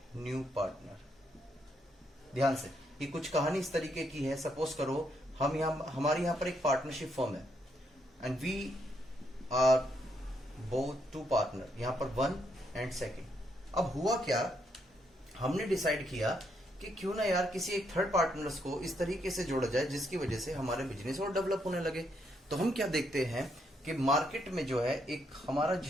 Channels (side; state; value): both; normal; correlation 0.76